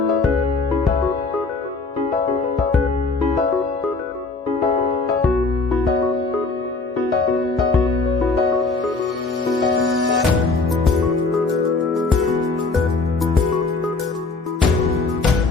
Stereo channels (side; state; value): right; quieter; 3.8 dB